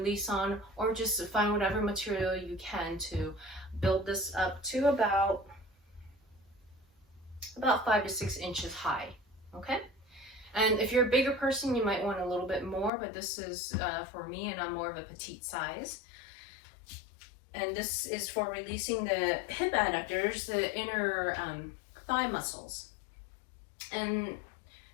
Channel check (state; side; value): drops out; right; at 12.9 s